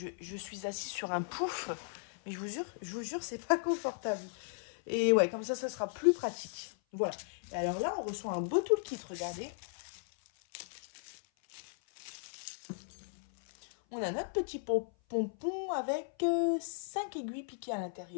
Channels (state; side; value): silent; right; 54 dB below the other